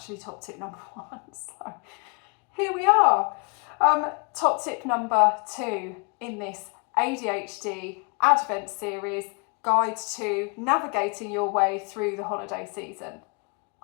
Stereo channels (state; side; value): quieter; right; 37.5 dB